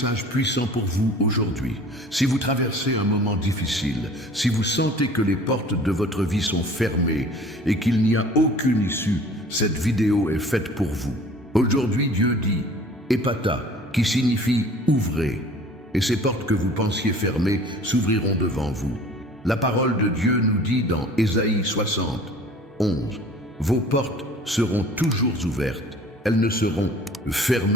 puissant pour vous aujourd'hui. Si vous traversez un moment difficile, si vous sentez que les portes de votre vie sont fermées et qu'il n'y a aucune issue, cette vidéo est faite pour vous. Aujourd'hui, Dieu dit « Ephphatha », qui signifie « ouvrez », et ces portes que vous pensiez fermées s'ouvriront devant vous. La parole de Dieu nous dit dans Ésaïe 60, 11, « Vos portes seront toujours ouvertes. Elles ne seront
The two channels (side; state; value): both; normal; correlation 0.47